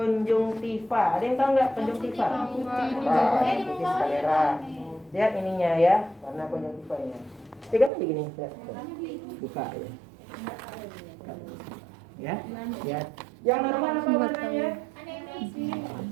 ada yang tahu nggak konjungtiva? Putih skalera. Lihat ininya ya, warna konjungtivanya. Pegang aja gini, lihat. Buka ya. Ya, lihat. Yang normal apa warnanya?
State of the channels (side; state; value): left; drops out; at 7.9 s